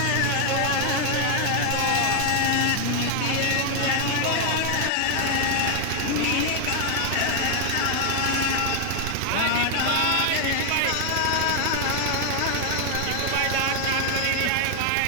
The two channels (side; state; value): both; different; correlation 0.00